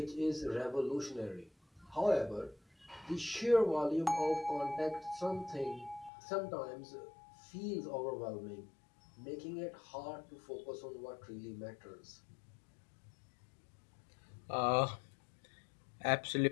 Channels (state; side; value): drops out; right; at 6.1 s